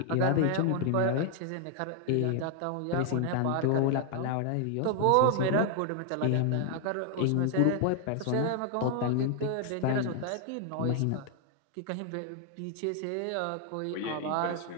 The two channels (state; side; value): different; both; correlation 0.00